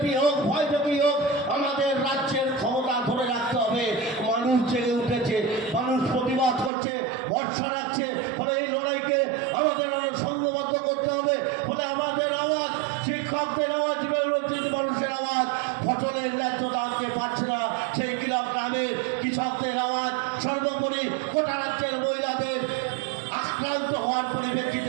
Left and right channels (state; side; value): drops out; left; at 6.7 s